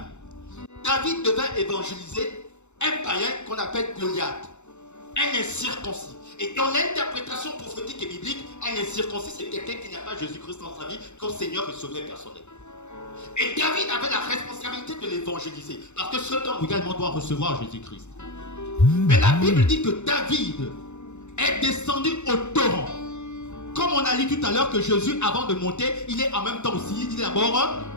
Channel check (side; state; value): right; late; 0.83 ms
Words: David devait évangéliser un païen qu'on appelle Goliath, un incirconcis. Et dans l'interprétation prophétique et biblique, un incirconcis, c'est quelqu'un qui n'a pas Jésus-Christ dans sa vie comme Seigneur et Sauveur personnel. Et David avait la responsabilité de l'évangéliser, parce que cet homme également doit recevoir Jésus-Christ. Mais la Bible dit que David est descendu au torrent. Comme on a lu tout à l'heure que Jésus, avant de monter, il est en même temps aussi, il est d'abord